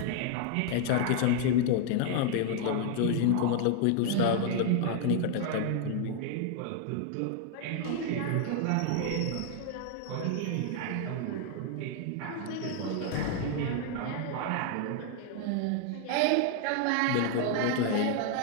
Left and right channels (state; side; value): different; both; correlation 0.00